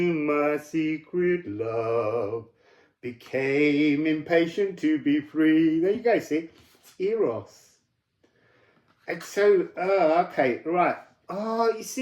my secret love became impatient to be free. There you go, see? It's Eros. And so, okay, right. Oh, you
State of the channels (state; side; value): identical; both; correlation 1.00